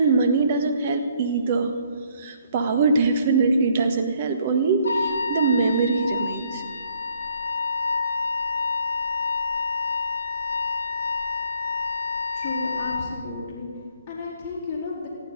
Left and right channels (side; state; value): both; inverted; correlation -0.66